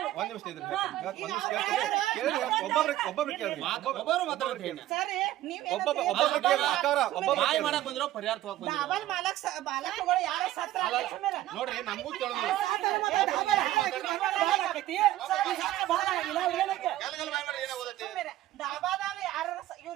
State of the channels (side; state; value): left; quieter; 14.6 dB